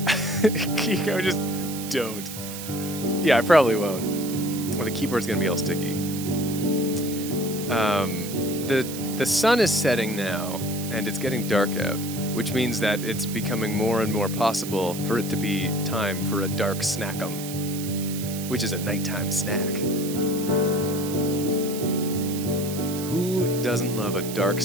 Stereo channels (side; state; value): right; noise; hiss, 10 dB below the sound